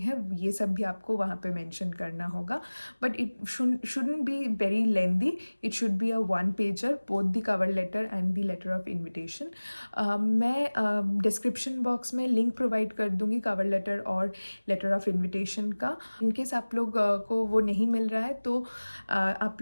ये सब भी आपको वहाँ पे मेंशन करना होगा, but it shouldn't be very lengthy. It should be a one pager, both the cover letter and the letter of invitation. मैं डिस्क्रिप्शन बॉक्स में लिंक प्रोवाइड कर दूंगी कवर लेटर और लेटर ऑफ इनविटेशन का। In case आप लोग को वो नहीं मिल रहा है तो आप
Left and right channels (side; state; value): both; inverted; correlation -1.00